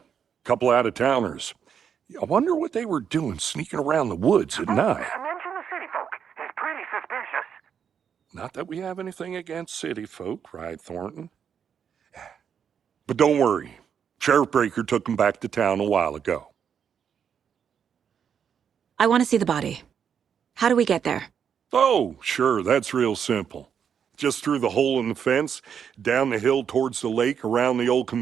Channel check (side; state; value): left; quieter; 7.7 dB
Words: couple out-of-towners. I wonder what they were doing sneaking around the woods at night. Mention the city folk. It's pretty suspicious. Not that we have anything against city folk, cried Thornton. But don't worry. Sheriff Breaker took him back to town a while ago. I want to see the body. How do we get there? Oh, sure, that's real simple. Just through the hole in the fence, down the hill towards the lake, around the old